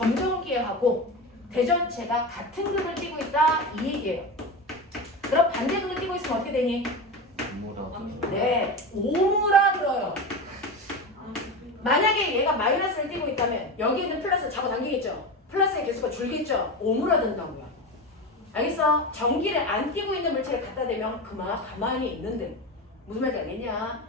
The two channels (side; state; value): both; normal; correlation 0.23